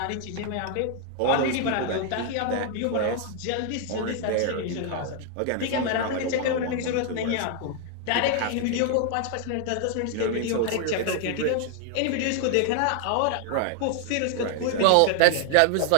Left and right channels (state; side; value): different; both; correlation 0.00